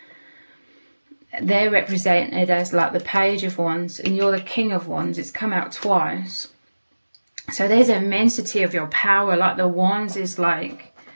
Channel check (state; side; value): inverted; both; correlation -1.00